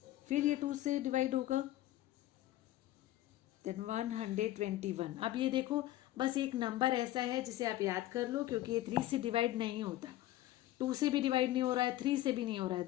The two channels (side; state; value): right; quieter; 15.0 dB